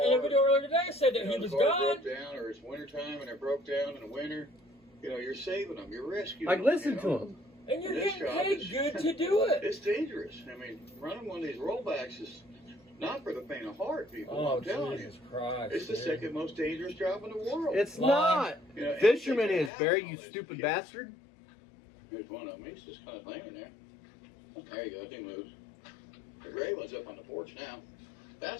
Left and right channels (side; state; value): right; drops out; at 19.7 s